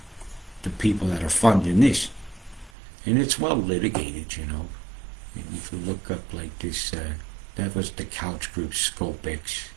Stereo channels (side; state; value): left; drops out; at 2.7 s